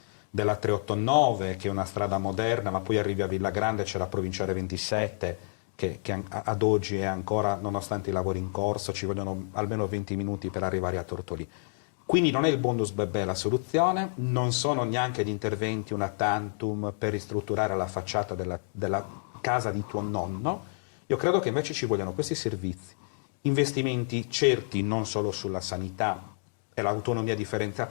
della 389, che è una strada moderna, ma poi arrivi a Villagrande, c'è la provinciale 27, che ad oggi è ancora, nonostante i lavori in corso, ci vogliono almeno 20 minuti per arrivare a Tortolì. Quindi non è il bonus bebè la soluzione, non sono neanche gli interventi una tantum per ristrutturare la facciata della casa di tuo nonno. Io credo che invece ci vogliano questi servizi, investimenti certi non solo sulla sanità, e l'autonomia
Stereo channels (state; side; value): silent; right; digital silence